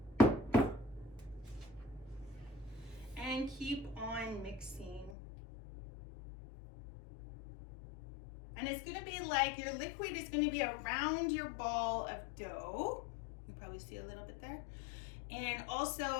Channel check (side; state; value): right; drops out; at 5.2 s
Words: And keep on mixing. And it's gonna be like, your liquid is gonna be around your ball of dough. You probably see a little bit there. And